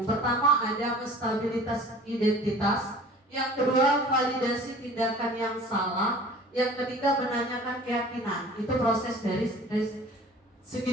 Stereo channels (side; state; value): both; normal; correlation 0.45